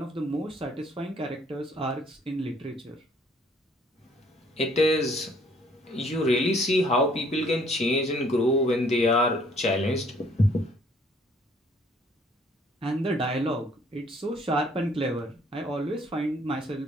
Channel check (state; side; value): normal; both; correlation 0.61